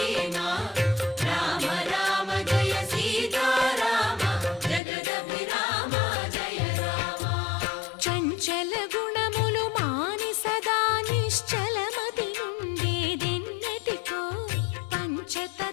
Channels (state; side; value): drops out; right; at 4.8 s